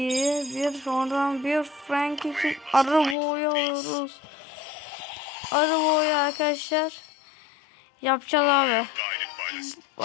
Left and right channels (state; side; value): drops out; right; at 3.2 s